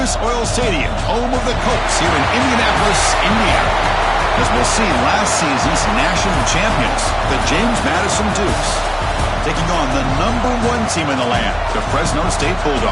Oil Stadium, home of the Colts here in Indianapolis, Indiana. As we'll see, last season's national champions, the James Madison Dukes, taking on the #1 team in the land, the Fresno State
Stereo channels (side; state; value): both; identical; correlation 1.00